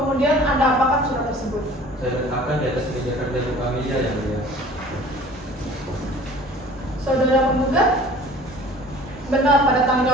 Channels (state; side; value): normal; both; correlation 0.47